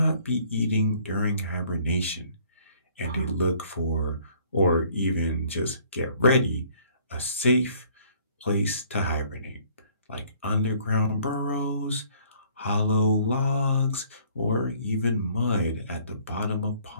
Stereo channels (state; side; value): inverted; both; correlation -0.59